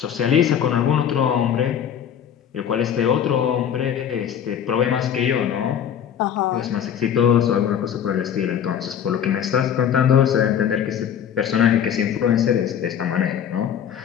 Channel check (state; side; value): quieter; right; 8.9 dB